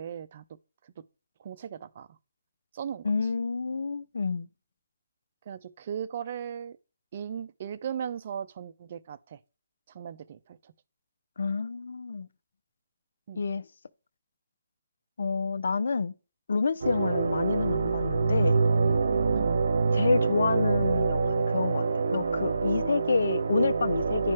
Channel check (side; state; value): both; inverted; correlation -0.85